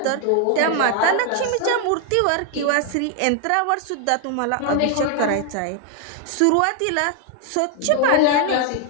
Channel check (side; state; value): both; different; correlation 0.00